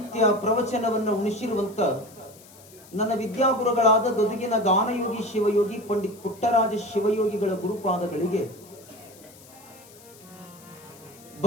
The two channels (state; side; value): noise; left; hiss, 23 dB below the sound